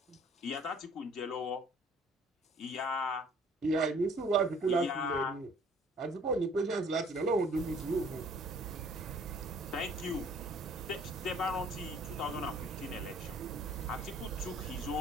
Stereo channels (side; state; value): both; normal; correlation 0.55